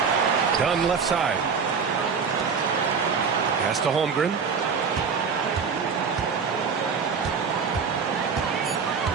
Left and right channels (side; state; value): left; quieter; 5.8 dB